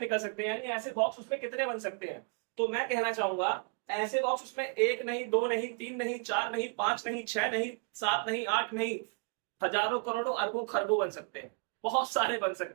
सकते हैं, यानी ऐसे बॉक्स उसमें कितने बन सकते हैं। तो मैं कहना चाहूंगा ऐसे बॉक्स उसमें एक नहीं, दो नहीं, तीन नहीं, चार नहीं, पांच नहीं, छह नहीं, सात नहीं, आठ नहीं, हजारों करोड़ों अरबों खरबों बन सकते हैं, बहुत सारे बन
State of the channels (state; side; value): quieter; left; 38.6 dB